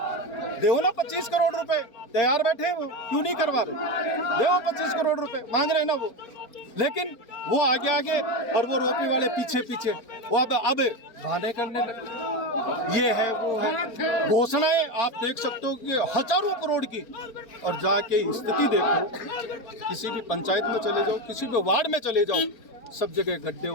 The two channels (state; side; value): late; right; 4.4 ms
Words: देवो ना 25 करोड़ रुपए, तैयार बैठे, वो क्यों नहीं करवा रहे? देवो 25 करोड़ रुपए मांग रहे हैं ना वो, लेकिन वो आगे और वो रोपवे वाले पीछे। वो अब बहाने करने लगे, ये है वो है। घोषणाएं आप देख सकते हो कि हजारों करोड़ की, और जाके स्थिति देखो, किसी भी पंचायत में चले जाओ, किसी भी वार्ड में चले जाओ, सब जगह गड्ढे